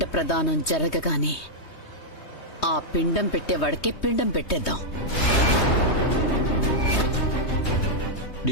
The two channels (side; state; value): right; late; 3.2 ms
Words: ప్రదానం జరగగానే ఆ పిండం పెట్టేవాడికే పిండం పెట్టేద్దాం.